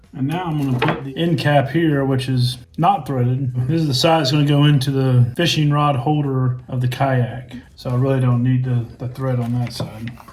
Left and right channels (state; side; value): identical; both; correlation 1.00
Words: And now I'm going to put the end cap here, which is not threaded. This is the side that's going to go into the fishing rod holder of the kayak. So I really don't need the thread on that side.